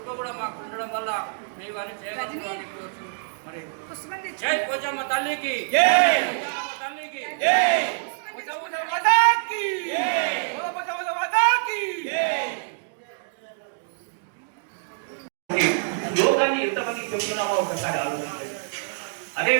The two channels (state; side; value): silent; left; digital silence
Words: కూడా మాకు ఉండడం వల్ల మేము అని చేయగలుగుతాం అని కోరుచు. మరి జై పోచమ్మ తల్లికి, తల్లికి యోగాన్ని ఎంతమందికి చెబుతున్నామో ఒకసారి ఆలోచించండి.